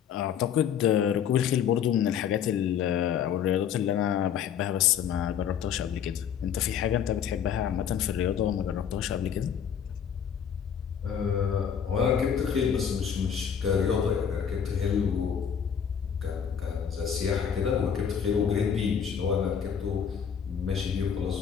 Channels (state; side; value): quieter; right; 8.0 dB